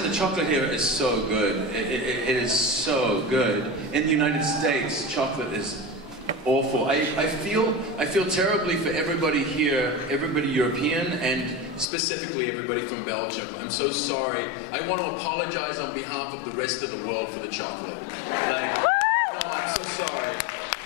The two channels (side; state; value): right; drops out; at 11.9 s